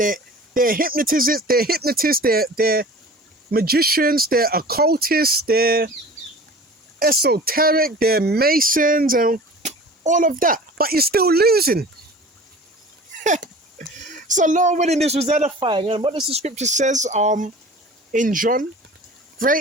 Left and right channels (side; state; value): both; normal; correlation 0.41